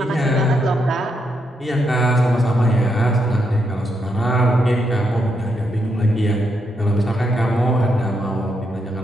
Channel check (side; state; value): both; normal; correlation 0.80